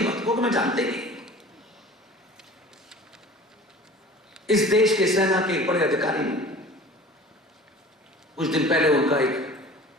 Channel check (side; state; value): both; normal; correlation 0.42